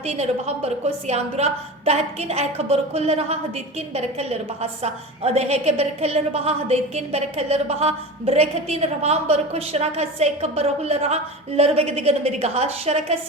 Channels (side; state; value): both; normal; correlation 0.29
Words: रबहम बरको सियांदुरा दहतकिन ehkabar कुल रहा हदेतकिन बरकलर बहा सा अदहे के बरकलर बहा हदेतकिन बरकलर बहा बरकतीन रबहम बरको शरका से खबर हो रहा लरबेगदिगन मेरी गहा